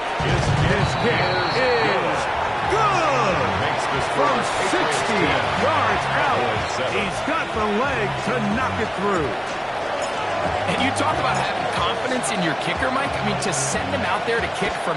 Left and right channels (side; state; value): both; identical; correlation 1.00